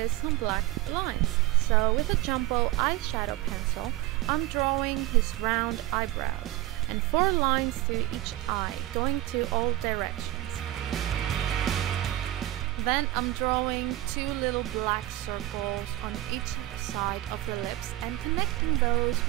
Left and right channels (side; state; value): left; quieter; 16.6 dB